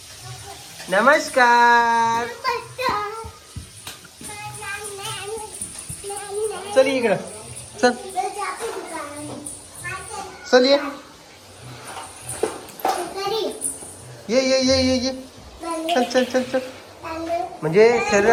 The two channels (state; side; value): identical; both; correlation 1.00